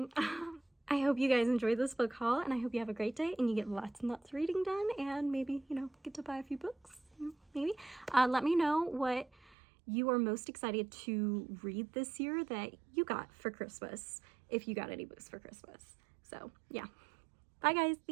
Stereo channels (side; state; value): left; drops out; at 9.6 s